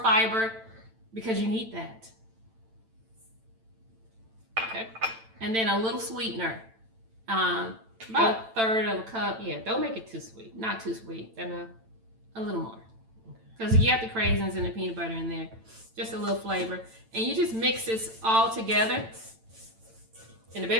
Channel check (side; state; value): left; late; 9.0 ms